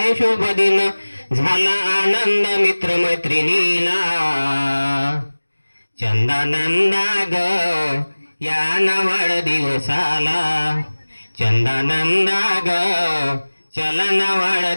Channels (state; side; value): inverted; both; correlation -1.00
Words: शुभ दिन, झाला आनंद मित्र मैत्रिणीला चंदानंदा ग या वाढदिवसाला, चंदानंदा ग चला ना